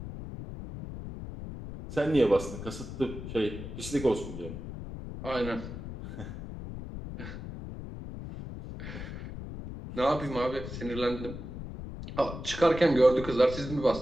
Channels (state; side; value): noise; left; rumble, 9 dB below the sound